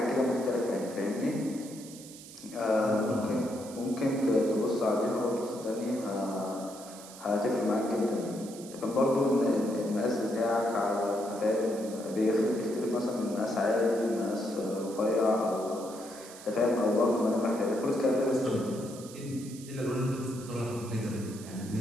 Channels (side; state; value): right; noise; hiss, 16 dB below the sound